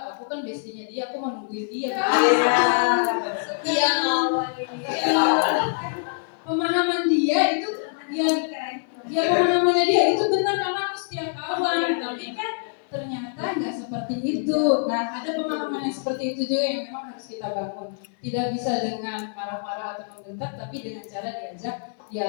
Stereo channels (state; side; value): silent; right; digital silence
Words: aku kan bestinya dia, aku mau nungguin dia. Iya, pemahaman dia itu, pemahamannya dia itu benar karena aku setia kawan, tapi kan ternyata nggak seperti itu. Nah, ada pemahaman yang seperti itu juga yang memang harus kita bangun. Tidak bisa dengan marah-marah atau membentak, tapi dengan cara diajak